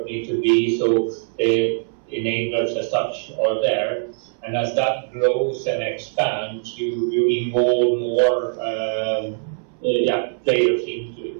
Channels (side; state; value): left; silent; 64 dB below the other